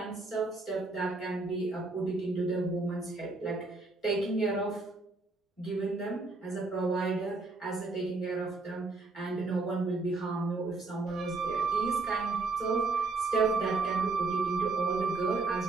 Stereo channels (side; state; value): left; quieter; 3.6 dB